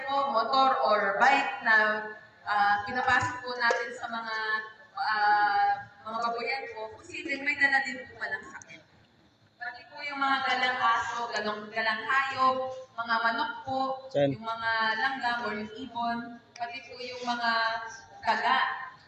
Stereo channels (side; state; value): both; identical; correlation 1.00